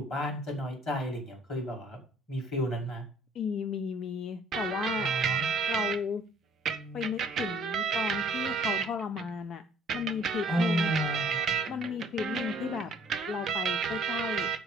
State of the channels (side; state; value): both; normal; correlation 0.58